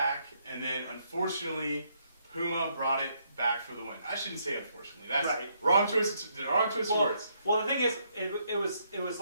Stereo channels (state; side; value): inverted; both; correlation -0.73